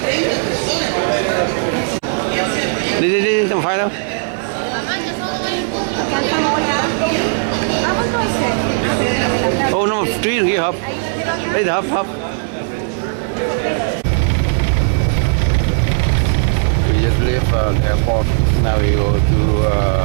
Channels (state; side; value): silent; left; 62 dB below the other